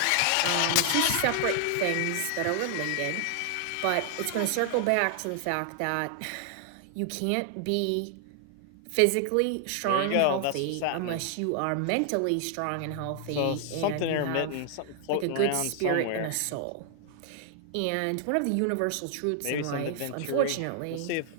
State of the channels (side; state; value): both; different; correlation 0.00